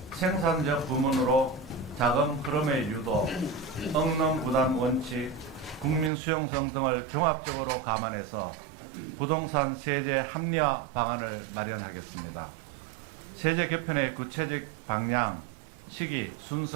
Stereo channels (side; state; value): left; drops out; at 6.1 s